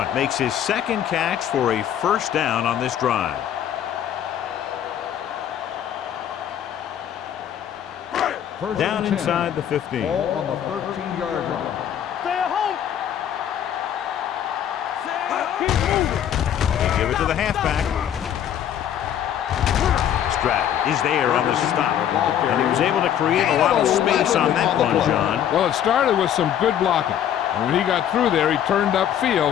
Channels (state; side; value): quieter; right; 10.0 dB